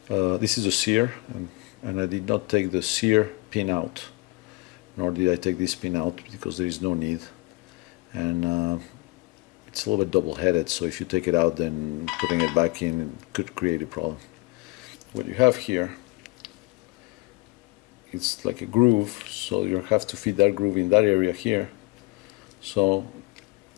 this is a sear, and I did not take the sear pin out, nor did I take this pin out because there is no need, and it's a little bit double-headed, so if you take it out, then putting it back in could create a problem. What you have here, it's like a groove, so you have to fit that groove in that area here. So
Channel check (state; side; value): quieter; right; 24.2 dB